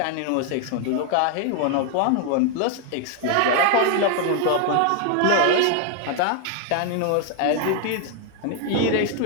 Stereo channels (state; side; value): different; both; correlation 0.00